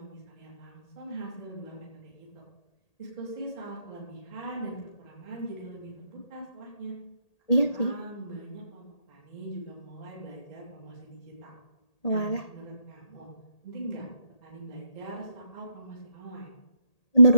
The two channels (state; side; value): late; right; 1.8 ms